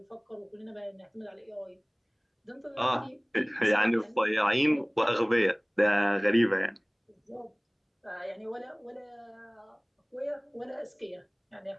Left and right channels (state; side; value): identical; both; correlation 1.00